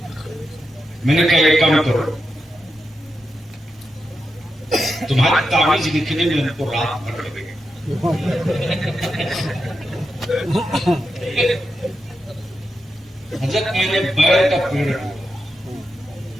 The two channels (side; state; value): both; normal; correlation 0.87